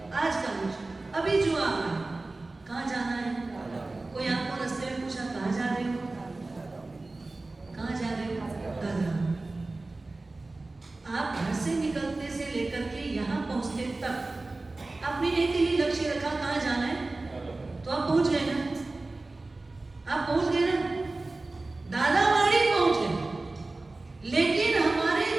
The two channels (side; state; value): left; quieter; 3.2 dB